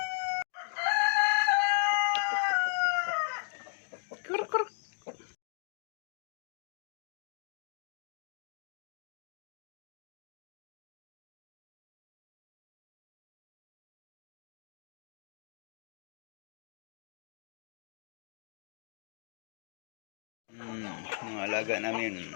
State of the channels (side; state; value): right; silent; digital silence